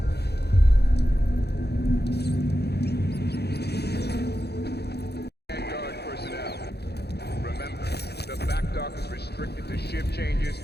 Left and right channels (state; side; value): late; right; 0.48 ms